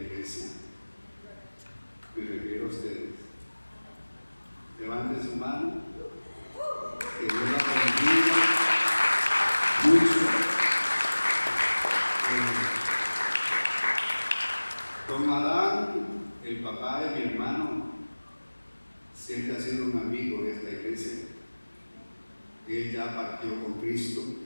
iglesia. Me refiero a ustedes. Levanten su mano, que Dios la bendiga mucho. Don Adán, el papá de mi hermano, siempre ha sido un amigo de esta iglesia. Él ya partió con Cristo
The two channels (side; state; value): both; inverted; correlation -1.00